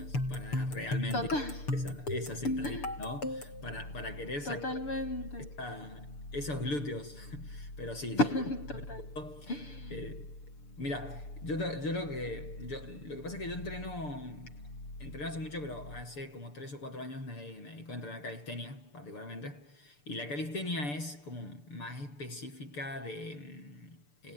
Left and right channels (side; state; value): right; late; 6.8 ms